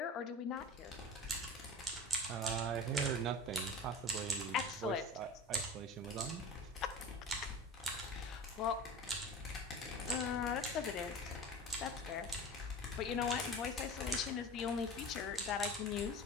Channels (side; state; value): both; normal; correlation 0.34